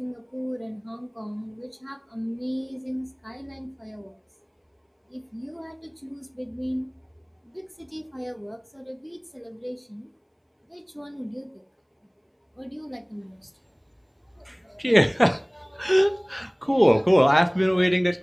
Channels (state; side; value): identical; both; correlation 1.00